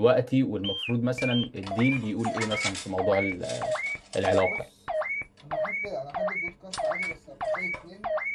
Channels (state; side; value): identical; both; correlation 1.00